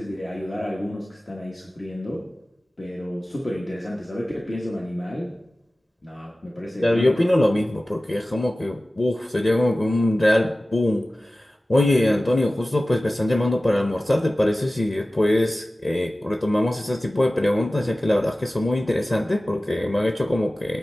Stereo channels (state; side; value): normal; both; correlation 0.96